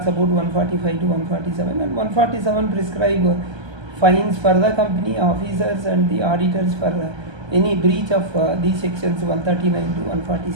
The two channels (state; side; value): late; left; 1.3 ms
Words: about 145 to 147, and 147 prescribe fines for the company officers and the auditors for any breach of these sections 139 to